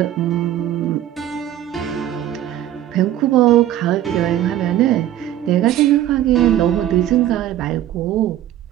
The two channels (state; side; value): quieter; left; 12.3 dB